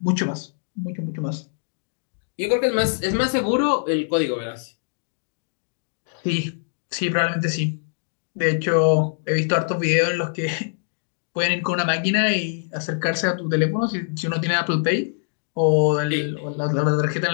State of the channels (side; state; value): right; silent; digital silence